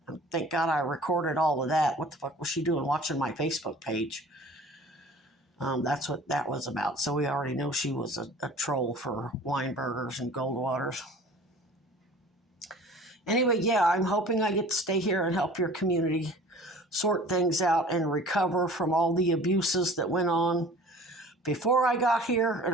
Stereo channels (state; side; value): normal; both; correlation 0.45